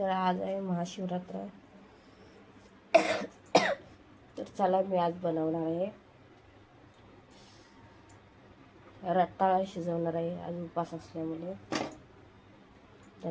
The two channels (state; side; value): identical; both; correlation 1.00